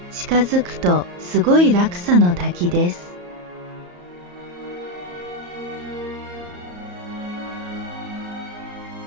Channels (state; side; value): late; left; 34 ms